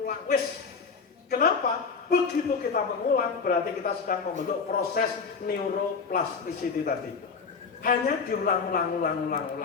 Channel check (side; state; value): right; quieter; 5.3 dB